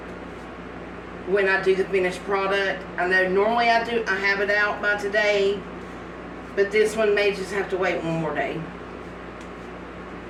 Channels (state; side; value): identical; both; correlation 1.00